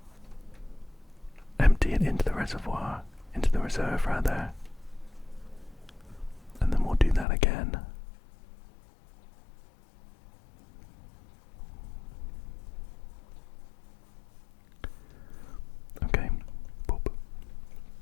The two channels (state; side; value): drops out; right; at 7.2 s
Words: empty it into the reservoir, into the reserve rather, and then we'll do that again. Okay, boop.